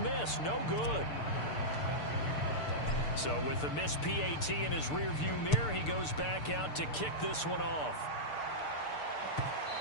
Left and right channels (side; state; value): right; late; 6.7 ms